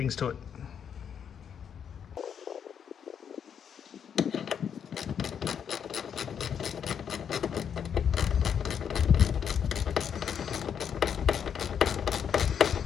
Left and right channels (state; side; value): quieter; right; 7.9 dB